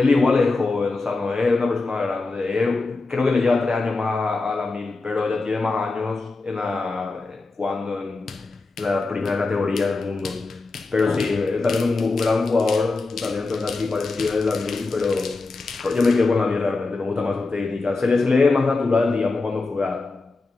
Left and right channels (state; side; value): quieter; right; 3.6 dB